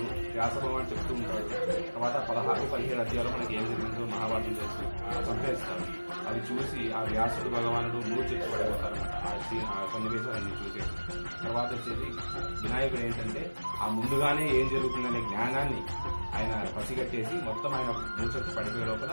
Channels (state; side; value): inverted; both; correlation -1.00